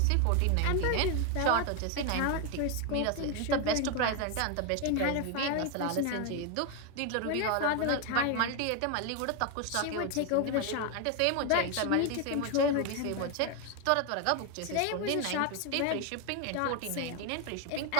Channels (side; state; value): both; different; correlation 0.01